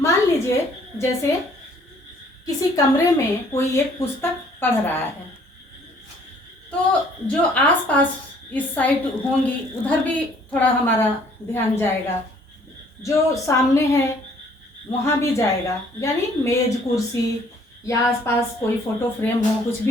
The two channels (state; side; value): normal; both; correlation 0.59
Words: लीजिए जैसे किसी कमरे में कोई एक पुस्तक पढ़ रहा है, तो जो आसपास इस साइड होंगी उधर भी थोड़ा हमारा ध्यान जाएगा, जो सामने है वहाँ भी जाएगा, यानी मेज कुर्सी या आसपास कोई फोटो फ्रेम हो, कुछ